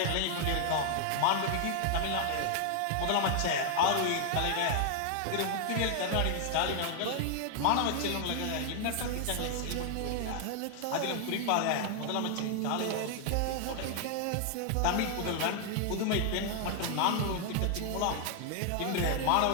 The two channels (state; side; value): different; both; correlation 0.00